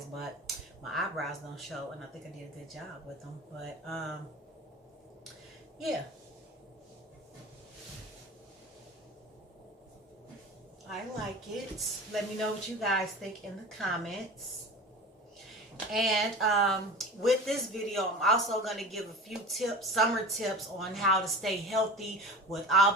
but my eyebrows don't show, and I think I did a good job with them. But yeah, I like it. Let me know what you guys think in the comments. And with this video, I'm also going to give a few tips, summer tips on how to stay healthy with all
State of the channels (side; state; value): both; normal; correlation 0.35